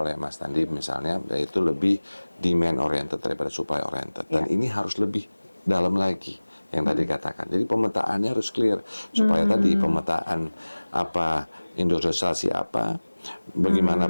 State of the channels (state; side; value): inverted; both; correlation -1.00